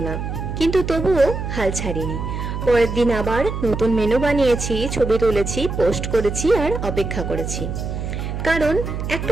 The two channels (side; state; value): right; noise; hum, 5 dB below the sound